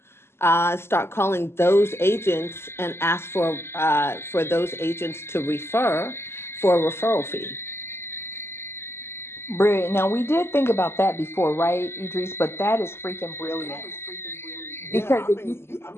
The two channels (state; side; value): late; right; 0.12 ms